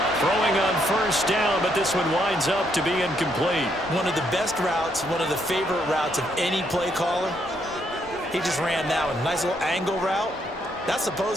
Throwing on first down, but this one winds up to be incomplete. One of the best routes, one of the favorite routes of any play caller. He just ran that one. Nice little angle route. That's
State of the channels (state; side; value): normal; both; correlation 0.74